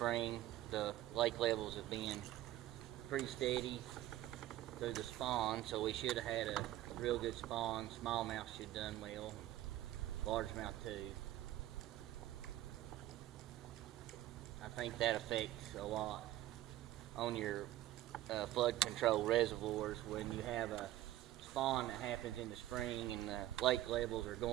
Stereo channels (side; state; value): left; quieter; 14.4 dB